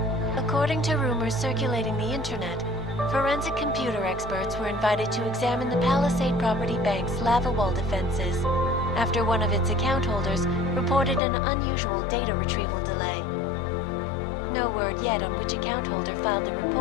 According to rumors circulating the internet, forensic computer experts were invited to examine the Palisade Property Bank's lava wall defenses after one of its account holders reported an unusual data retrieval delay. No word yet on which account holder filed the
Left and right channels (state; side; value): drops out; right; at 11.2 s